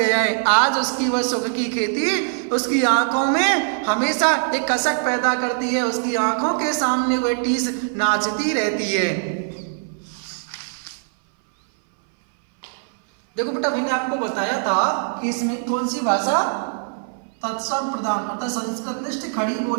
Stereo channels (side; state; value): left; silent; 61 dB below the other